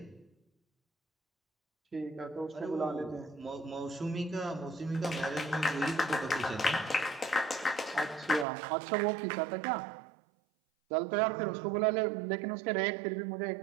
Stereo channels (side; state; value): left; drops out; at 8.5 s